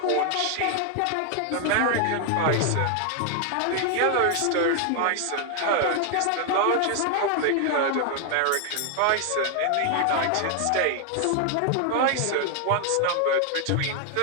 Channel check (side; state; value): both; different; correlation 0.00